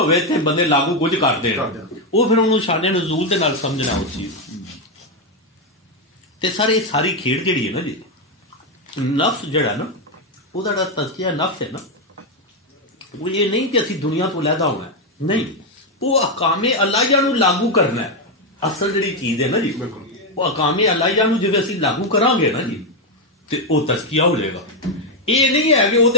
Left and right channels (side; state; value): both; normal; correlation 0.04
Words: تھے بندے لاگو کچھ کرتے ہیں، وہ پھر انہوں شان نزول دے نال سمجھنا اس چیز تے سارے ساری کھیڑ جڑی ہے نا جی، نفس جڑا نا وہ دا تزکیہ نفس ہے نا، وہ یہ نہیں کہ اسی دنیا تو علیحدہ ہونا ہے، نہیں، وہ احکام الہیہ نو لاگو کرنا ہے۔ اصل جڑی چیز ہے نا جی وہ احکام الہیہ نو جے اسی لاگو کران گے نا جی تے وہ تزکیہ ہو جائے گا۔ یہ نہیں ہے کہ وہ